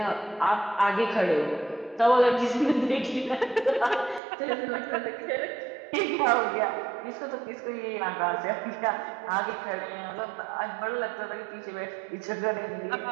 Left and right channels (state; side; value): drops out; left; at 4.2 s